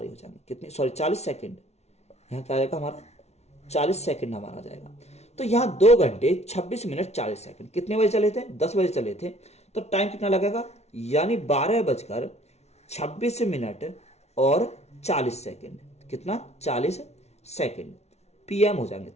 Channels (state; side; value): late; right; 0.31 ms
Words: हो जाएंगे। कितनी, सॉरी 40 सेकंड, यहाँ क्या आ जाएगा हमारा, 40 सेकंड हमारा जाएगा। तो यहाँ 2 घंटे 26 मिनट 40 सेकंड। कितने बजे चले थे, 10 बजे चले थे, तो टाइम कितना लगेगा, यानी 12:26 और 40 सेकंड। कितना, 40 सेकंड PM हो जाएंगे।